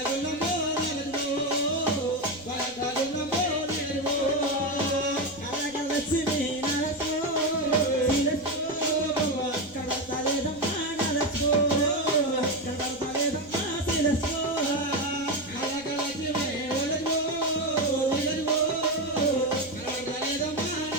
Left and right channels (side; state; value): right; noise; rumble, 24 dB below the sound